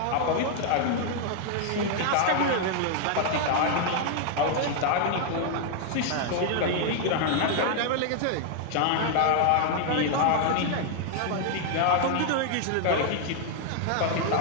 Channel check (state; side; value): different; both; correlation 0.00